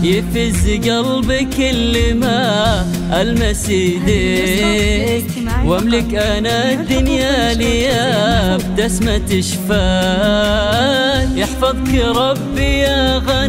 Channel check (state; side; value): identical; both; correlation 1.00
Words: يفز قلبي كل ما ألمس يديك، واملك انا الدنيا ليا بتسمة شفاك. يحفظك ربي يا